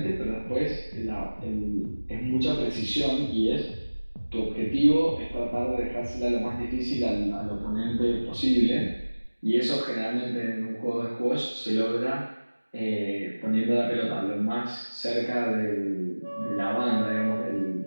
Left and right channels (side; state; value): both; inverted; correlation -1.00